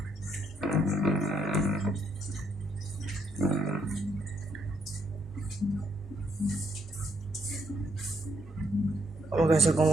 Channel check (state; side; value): normal; both; correlation 0.73